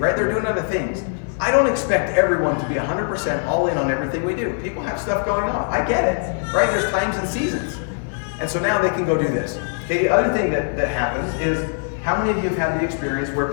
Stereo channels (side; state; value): right; silent; digital silence